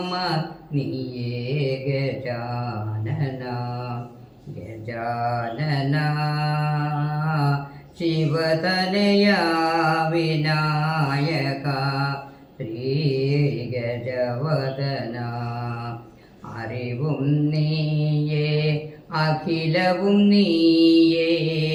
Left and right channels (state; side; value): identical; both; correlation 1.00